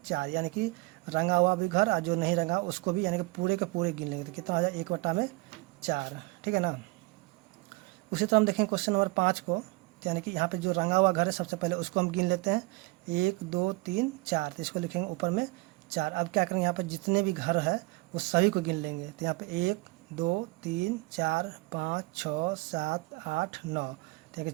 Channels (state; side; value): quieter; left; 24.5 dB